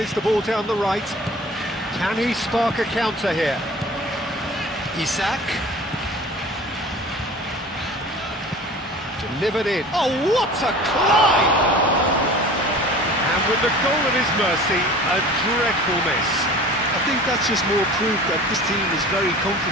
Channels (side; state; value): both; normal; correlation 0.42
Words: the ball down the right. Can he spark a counter here? Isak. Delivered in. Oh, what a climb! And with the goal at his mercy, a dreadful miss. I think that's just more proof that this team is very